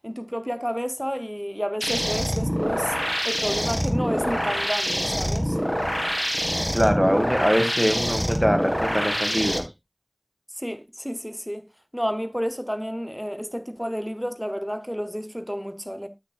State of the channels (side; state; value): both; identical; correlation 1.00